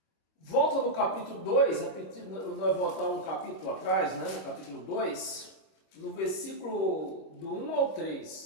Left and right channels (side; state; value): right; late; 26 ms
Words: Volta no capítulo 2, nós voltamos um capítulo atrás, né? No capítulo 2, no versículo do 1 ao